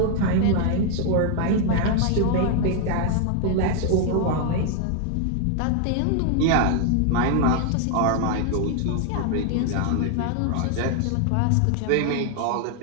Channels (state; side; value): different; both; correlation 0.00